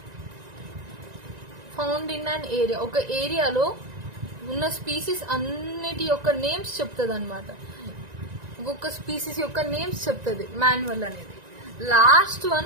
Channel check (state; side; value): late; left; 1.9 ms